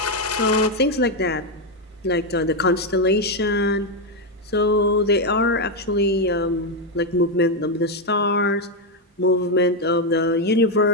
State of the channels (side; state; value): both; normal; correlation 0.04